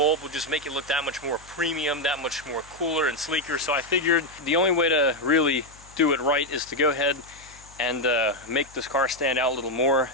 would just make it look that much more premium, that much more cooler and sleeker. So I figured the only way to really do it right is to go ahead and make this car stand out a little more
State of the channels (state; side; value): noise; left; hum, 24 dB below the sound